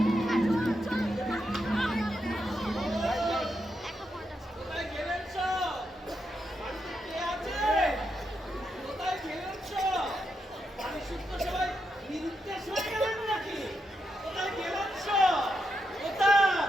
কোথায় গেলেন সব? বাড়িতে কে আছে? কোথায় গেলেন সব? বাড়ি শুদ্ধ সবাই নিরুদ্দেশ হয়ে গেলেন নাকি? কোথায় গেলেন সব? কোথায়?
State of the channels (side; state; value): both; normal; correlation 0.83